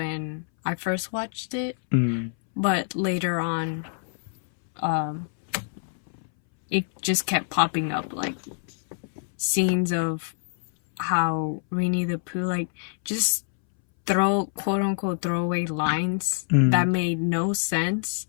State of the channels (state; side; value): silent; right; 61 dB below the other